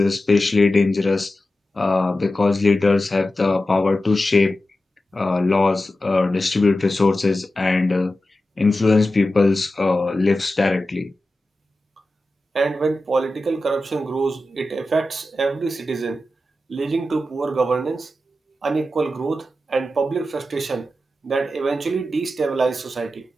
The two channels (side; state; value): both; normal; correlation 0.93